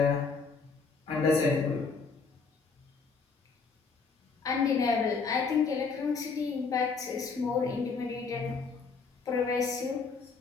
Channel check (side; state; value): right; quieter; 4.8 dB